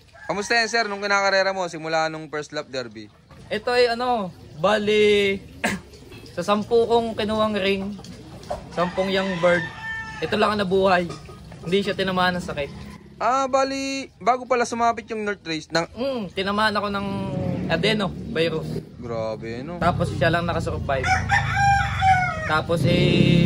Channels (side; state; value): both; identical; correlation 1.00